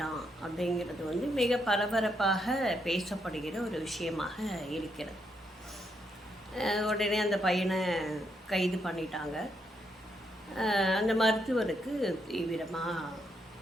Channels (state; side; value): normal; both; correlation 0.78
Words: அப்படிங்கிறது மிக பரபரப்பாக பேசப்படுகிற ஒரு விஷயமாக இருக்கிறது. உடனே அந்த பையனை கைது பண்ணிட்டாங்க. அந்த மருத்துவருக்கு தீவிரமாக